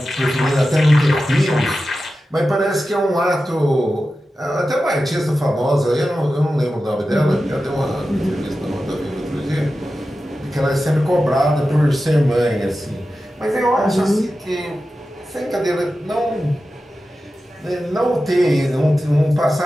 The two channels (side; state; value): both; normal; correlation 0.93